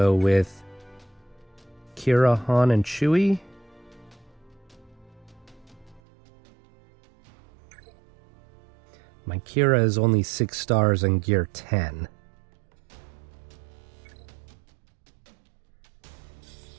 with Kira, Han, and Chewie. My Kira is only 6 stars and gear 10.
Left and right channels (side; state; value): left; drops out; at 6.0 s